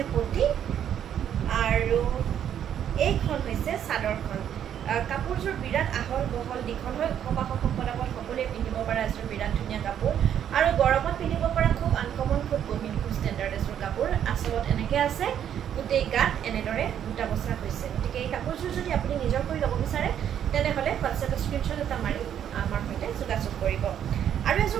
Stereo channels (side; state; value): left; quieter; 9.6 dB